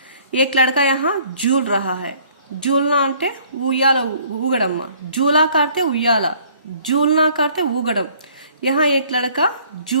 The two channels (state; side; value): inverted; both; correlation -0.58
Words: एक लड़का यहाँ झूल रहा है। झूलना అంటే ఉయ్యాల ఊగడం। झूला करते उయ్याला, झूलना करते ఊగడం। यहाँ एक लड़का